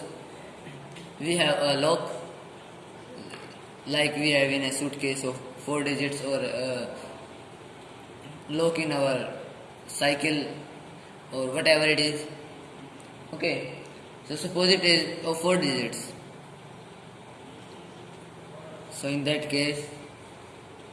we have a lock, like we have in a suitcase of 4 digits, or a lock in our cycle, or whatever it is. Okay, so suppose it is of 4 digits. So in that case,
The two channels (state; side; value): identical; both; correlation 1.00